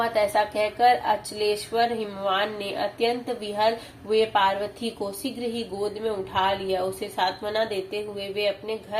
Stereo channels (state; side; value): identical; both; correlation 1.00